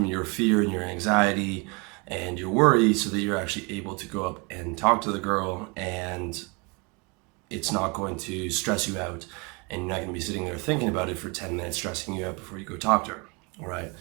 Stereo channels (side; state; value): left; quieter; 30.5 dB